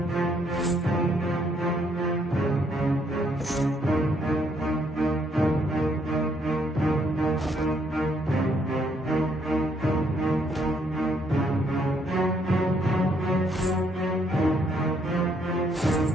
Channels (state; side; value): normal; both; correlation 0.70